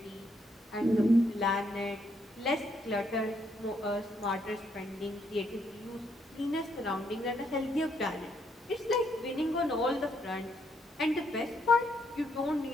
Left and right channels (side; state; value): both; normal; correlation 0.74